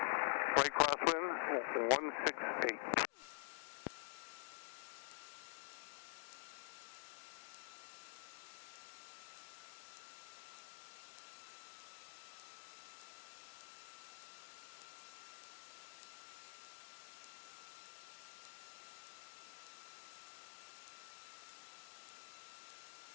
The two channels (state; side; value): silent; right; digital silence